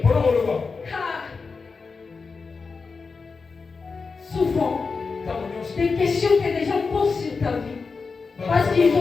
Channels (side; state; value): right; quieter; 4.7 dB